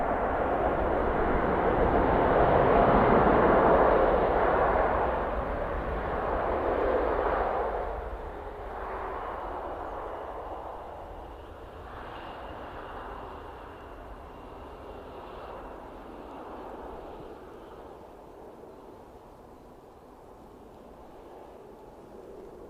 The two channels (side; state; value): both; identical; correlation 1.00